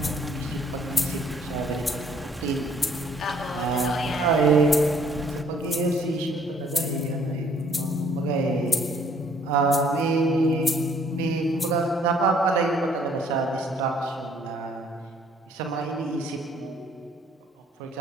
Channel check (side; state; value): both; normal; correlation 0.62